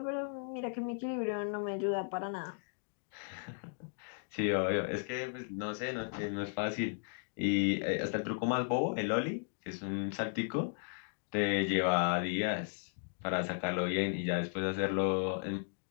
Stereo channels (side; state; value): right; silent; digital silence